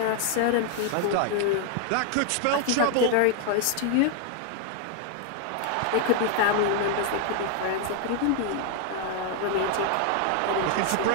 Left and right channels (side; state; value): both; different; correlation 0.00